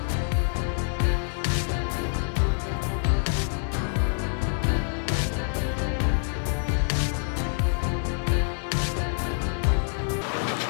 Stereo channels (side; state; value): right; silent; 59 dB below the other